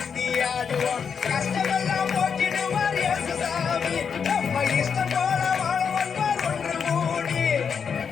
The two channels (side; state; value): right; quieter; 6.6 dB